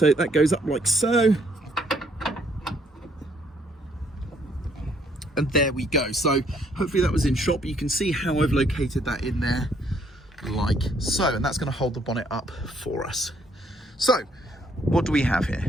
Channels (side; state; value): both; normal; correlation 0.67